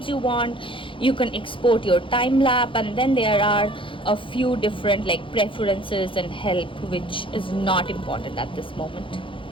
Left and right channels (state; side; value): late; right; 0.25 ms